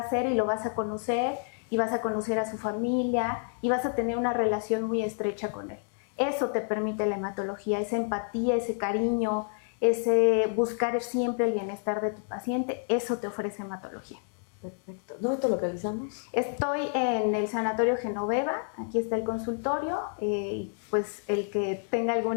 ser y lo vas a conocer y vas a conocer a su familia y vas a tener una relación muy estrecha con él. Eso te permite la hematología, esa empatía, ese cariño, ese buscar siempre el bienestar de tu paciente, eso te ofrece hematología. Perfecto. ¿Dónde te localizamos? Estoy en el Sanatorio Genoveva, aquí está el consultorio, y pues el que tenga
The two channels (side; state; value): right; silent; 58 dB below the other